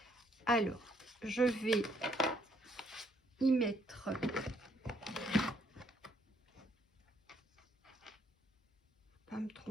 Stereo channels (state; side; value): normal; both; correlation 0.69